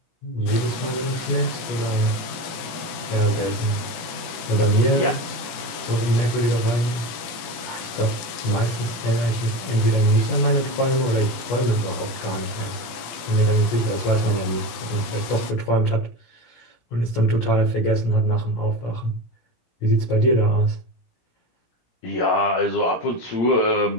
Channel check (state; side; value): late; right; 18 ms